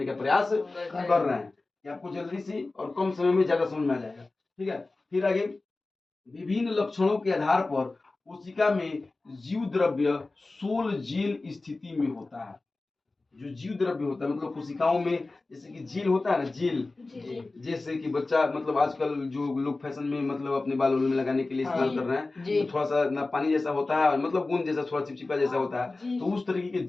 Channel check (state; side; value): quieter; right; 3.3 dB